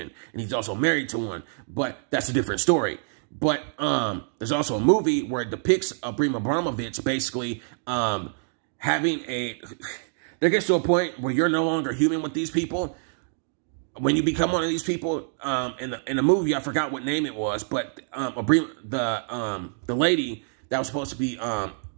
and he's also married to one, but that's a different story. But there's also a movie where it depicts Abrima Abramovich basically having there gets to a point where you're no longer human with these people. When you become one of these people, in the movie, I forgot what name it was, but the lady that was supposed to be,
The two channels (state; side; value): silent; left; digital silence